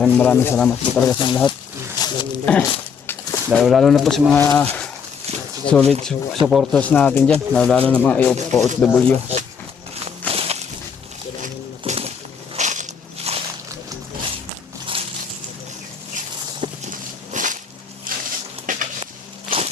salamat po talaga sa lahat. Lalo na po sa mga solid supporters natin dyan. Lalo na mga OFW.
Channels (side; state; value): right; quieter; 6.5 dB